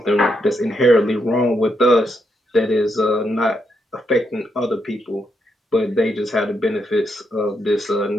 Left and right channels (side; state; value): both; normal; correlation 0.80